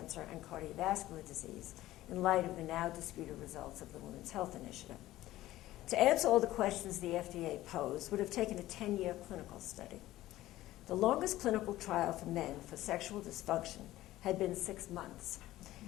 and cardiovascular disease, in light of the now disputed results of the Women's Health Initiative. To answer all the questions the FDA posed would have taken a 10-year clinical study. The longest clinical trial for men for sexual dysfunction had been 6 months.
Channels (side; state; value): right; quieter; 15.6 dB